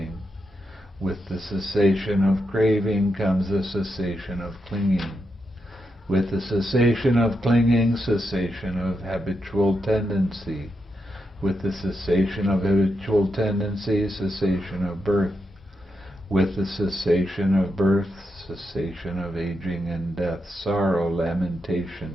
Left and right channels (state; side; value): normal; both; correlation 0.85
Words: With the cessation of craving comes the cessation of clinging. With the cessation of clinging, cessation of habitual tendency. With the cessation of habitual tendency, cessation of birth. With the cessation of birth, cessation of aging and death, sorrow,